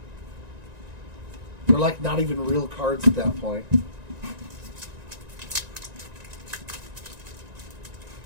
They're like not even real cards at that point.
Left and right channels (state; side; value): late; left; 1.9 ms